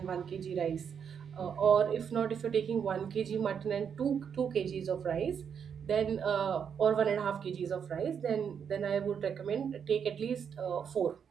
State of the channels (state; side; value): quieter; left; 7.4 dB